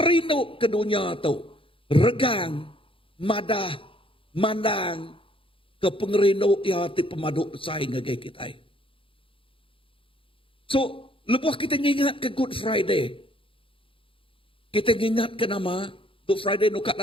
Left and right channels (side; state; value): right; late; 0.26 ms